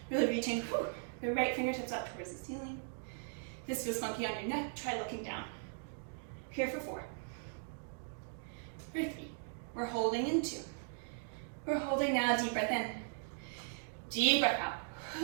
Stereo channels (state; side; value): silent; left; digital silence